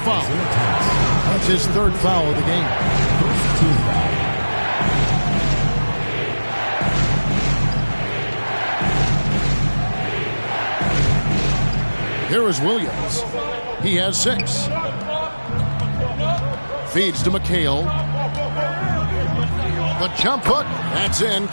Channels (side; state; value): both; inverted; correlation -1.00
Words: That's his 3rd foul of the game. First team foul. Here is Williams. He has 6. Feeds to McHale. The jump hook. That's in.